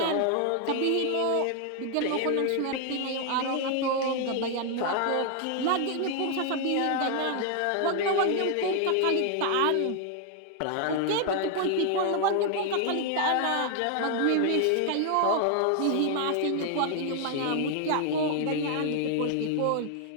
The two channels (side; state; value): both; different; correlation 0.00